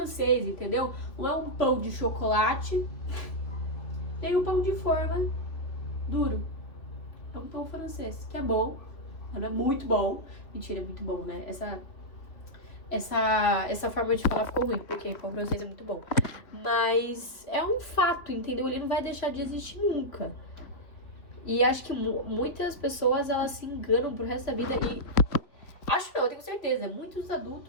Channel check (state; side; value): late; right; 2.9 ms